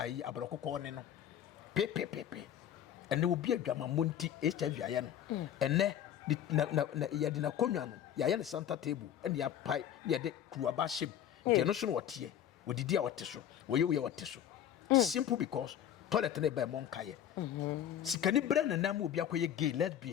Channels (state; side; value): quieter; right; 10.2 dB